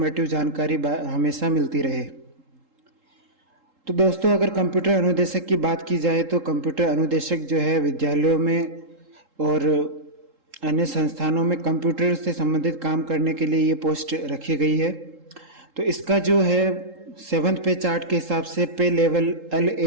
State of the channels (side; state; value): left; late; 3.7 ms